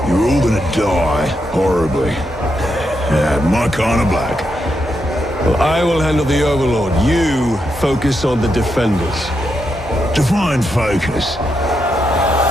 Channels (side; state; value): both; normal; correlation 0.82